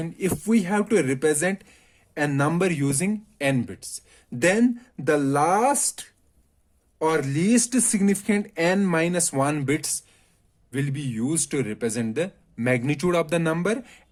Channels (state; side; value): identical; both; correlation 1.00